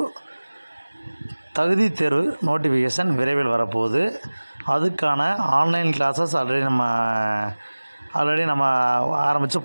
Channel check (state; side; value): inverted; both; correlation -1.00